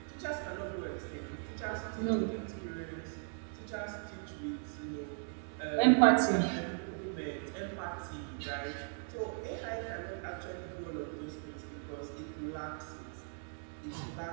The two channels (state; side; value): silent; left; 53 dB below the other